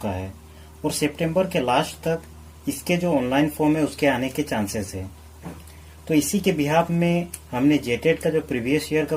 है और सितंबर के लास्ट तक इसके जो ऑनलाइन फॉर्म है उसके आने के चांसेस है। तो इसी के बिहाफ में हमने जेटेट का जो प्रीवियस ईयर का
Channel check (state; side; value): identical; both; correlation 1.00